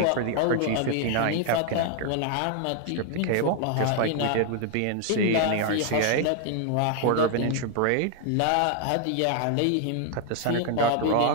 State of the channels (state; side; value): different; both; correlation 0.00